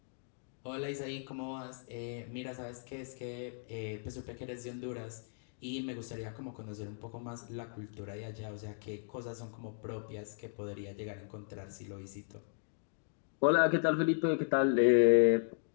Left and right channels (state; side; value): silent; right; digital silence